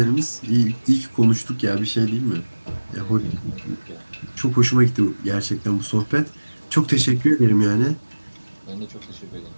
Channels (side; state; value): both; inverted; correlation -1.00